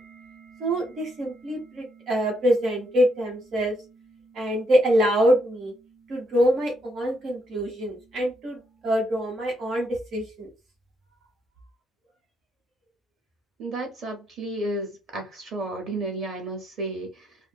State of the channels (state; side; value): normal; both; correlation 0.77